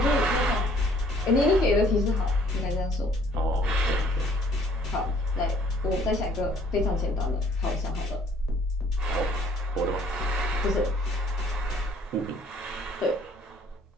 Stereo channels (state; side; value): normal; both; correlation 0.60